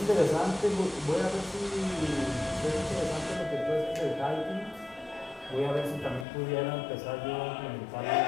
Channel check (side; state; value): right; drops out; at 6.2 s